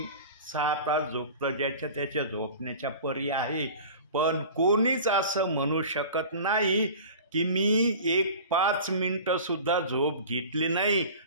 6 तास झोपतं. ज्याच्या त्याच्या झोपण्याच्या परी आहे. पण कोणीच असं म्हणू शकत नाही की मी एक 5 मिनटंसुद्धा झोप घेतली नाही,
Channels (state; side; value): inverted; both; correlation -0.38